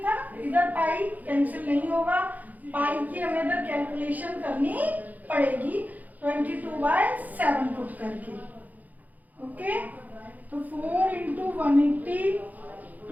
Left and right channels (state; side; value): late; left; 0.080 ms